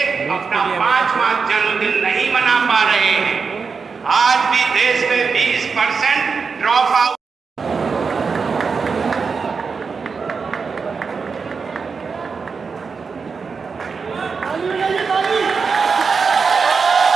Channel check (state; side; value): quieter; left; 5.2 dB